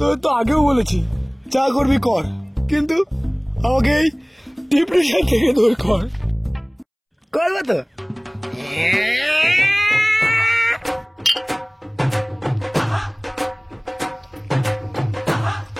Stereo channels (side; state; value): both; identical; correlation 1.00